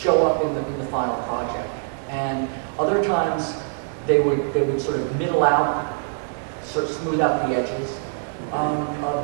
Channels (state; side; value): silent; left; digital silence